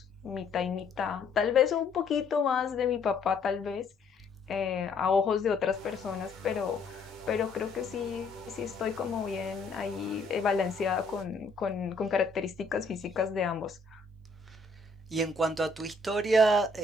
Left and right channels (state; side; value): quieter; right; 3.5 dB